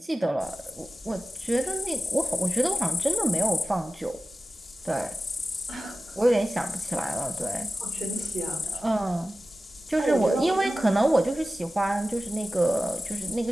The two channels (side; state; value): both; normal; correlation 0.95